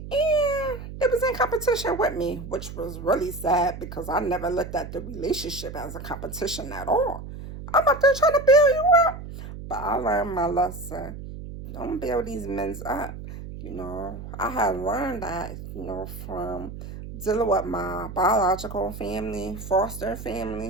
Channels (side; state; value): right; noise; hum, 11 dB below the sound